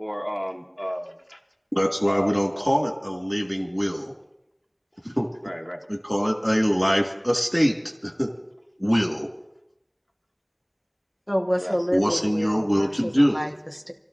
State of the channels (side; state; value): both; identical; correlation 1.00